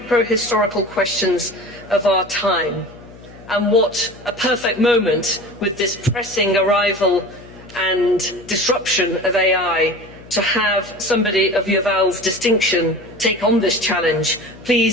questions of our time, and what a perfect moment with this pressing arrival and disruption of AI to have somebody of Yuval's distinction take on this challenge.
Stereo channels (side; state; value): left; noise; hum, 20 dB below the sound